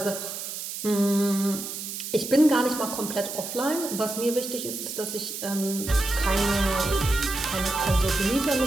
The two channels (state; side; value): noise; right; hiss, 7 dB below the sound